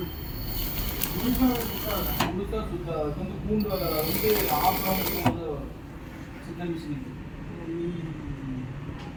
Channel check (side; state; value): both; identical; correlation 1.00